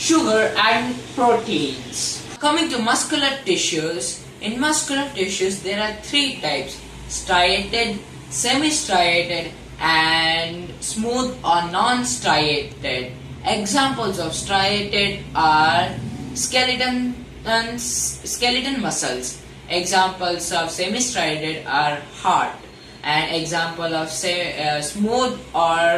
and proteins. Coming to muscular tissues, In muscular tissues, there are three types: striated, semi-striated, and smooth or non-striated. Examples of striated are skeleton muscles. Examples of semi-striated are heart. An example of smooth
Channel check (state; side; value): identical; both; correlation 1.00